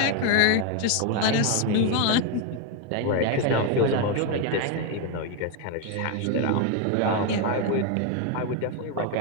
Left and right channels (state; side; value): different; both; correlation 0.01